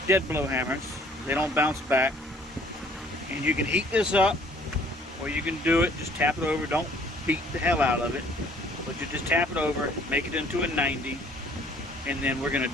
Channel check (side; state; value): both; normal; correlation 0.57